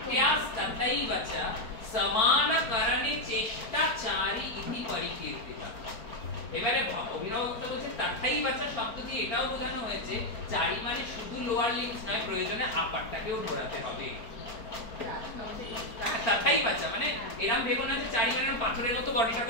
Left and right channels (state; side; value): late; right; 4.5 ms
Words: তথৈবচা সমানকরণে চেষ্টাচারী ইতি পরিকীর্তিতা। এবারে অভিনব গুপ্ত বলছে তথৈবচা শব্দ দিয়ে এটাও বোঝানো হয়েছে চারি মানে শুধু লোয়ার লিম্বস নয়, প্রয়োজনে আপারটাকেও ঘোরাতে হবে। তথৈবচা মানে এরকম ভেবো না যে চারি মানে পাথরের মতো বডিটা